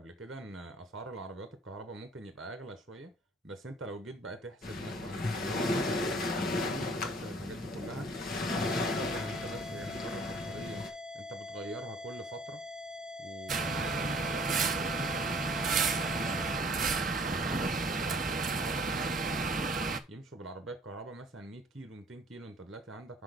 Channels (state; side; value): normal; both; correlation 0.55